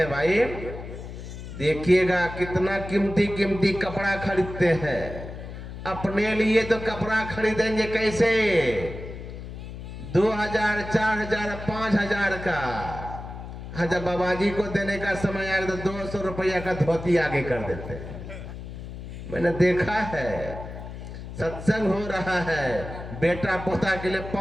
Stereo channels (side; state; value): left; noise; hum, 10 dB below the sound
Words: भाई? देखिएगा कितना कीमती कीमती कपड़ा खरीदते हैं। अपने लिए तो कपड़ा खरीदेंगे कैसे? 2000, 4000, 5000 का। हाँ, जब बाबा जी को देने का समय आया तो 200 रुपया का धोती आगे कर देते हैं। मैंने देखा है, सत्संग हो रहा है, बेटा पोता के लिए